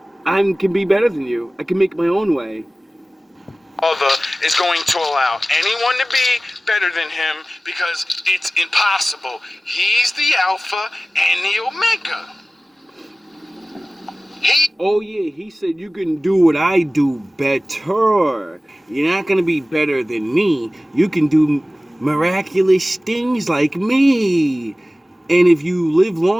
I can be better than you. I can make my own way. Father is going to allow anyone to be better than him because it's impossible. He's the Alpha and the Omega. Oh yeah, he said you can do what I do better. You're not gonna be better than me. You can do miraculous things like me. And if you live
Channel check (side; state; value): both; normal; correlation 0.97